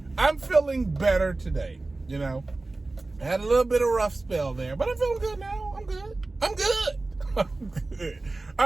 I'm feeling better today. You know, I had a little bit of a rough spell there, but I'm feeling good now. I'm good. I'm good.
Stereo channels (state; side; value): quieter; left; 3.2 dB